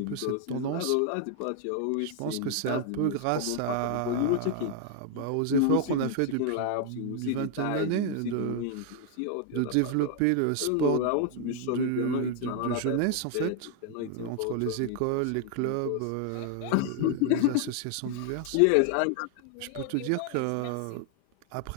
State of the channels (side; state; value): both; different; correlation 0.00